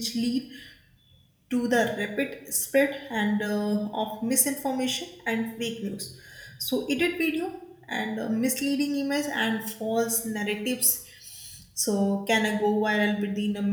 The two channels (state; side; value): identical; both; correlation 1.00